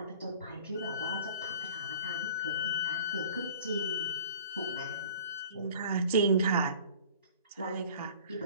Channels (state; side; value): inverted; both; correlation -0.46